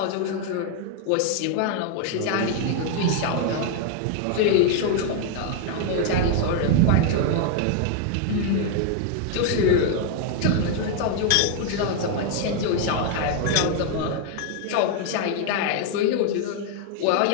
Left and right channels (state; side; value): different; both; correlation 0.00